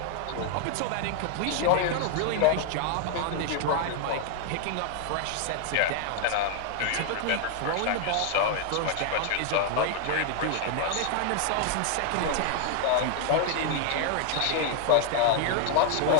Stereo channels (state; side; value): different; both; correlation 0.00